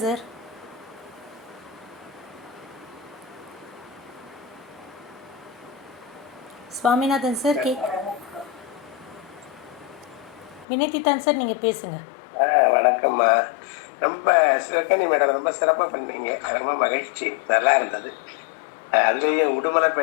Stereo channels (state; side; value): drops out; right; at 10.7 s